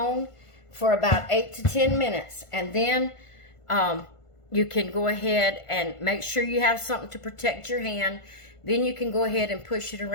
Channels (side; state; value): right; late; 1.5 ms